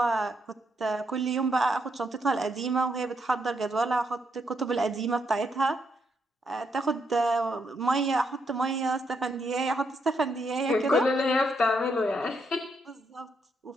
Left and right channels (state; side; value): normal; both; correlation 0.77